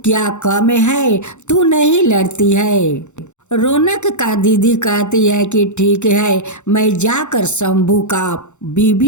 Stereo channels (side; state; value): right; late; 0.84 ms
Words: क्या कम है, तू नहीं लड़ती है। रौनक का दीदी कहती है कि ठीक है, मैं जाकर शंभू का